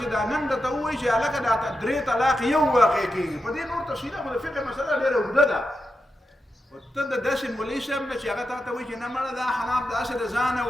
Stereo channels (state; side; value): normal; both; correlation 0.88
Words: چې دا نن درته ووایي چې هلکه دا 3 طلاق یو واقع کېږي، په دې نور تفصیله خو د فقه مسله ډېره اوږده ده. ته د داسې مولوي صاحب نه چې هغه تا ته وایي چې نه مړه دا حناب داسې د ځانه